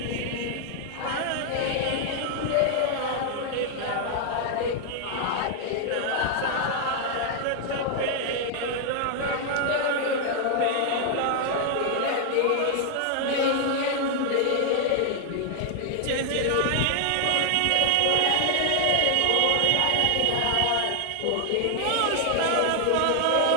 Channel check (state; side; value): different; both; correlation 0.00